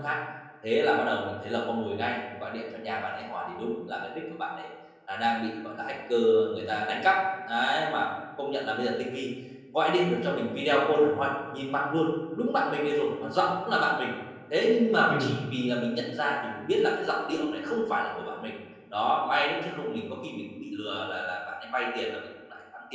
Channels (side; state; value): both; identical; correlation 1.00